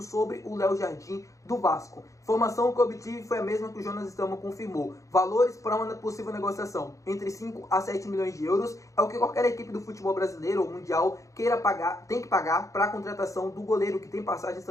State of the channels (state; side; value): late; right; 0.15 ms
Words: sobre o Léo Jardim do Vasco. Informação que eu obtive foi a mesma que o Jonas Stelman confirmou. Valores para uma possível negociação entre 5 a 7 milhões de euros é o que qualquer equipe do futebol brasileiro ou mundial queira pagar, tem que pagar para a contratação do goleiro, que tem passagens